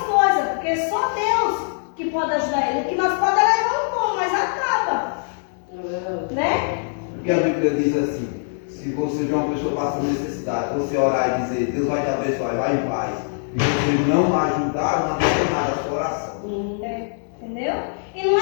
coisas, porque só Deus que pode ajudar eles. O que nós podemos levar um pão, mas acaba. Né? Porque a Bíblia diz assim, se você vê uma pessoa passando necessidade, você orar e dizer, Deus vai te abençoar, vai em paz, e você não ajudar, não adianta nada a sua oração. Entendeu? E não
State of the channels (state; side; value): silent; right; 64 dB below the other